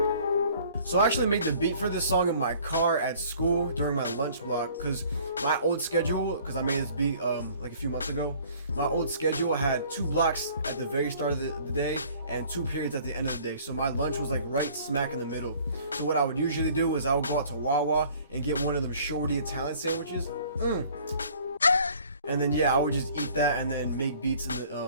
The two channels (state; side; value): inverted; both; correlation -0.54